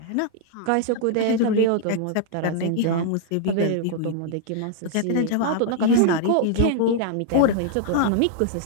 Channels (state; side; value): different; both; correlation -0.01